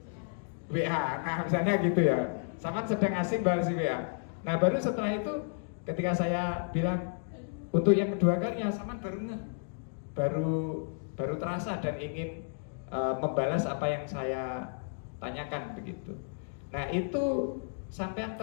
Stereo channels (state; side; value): silent; right; digital silence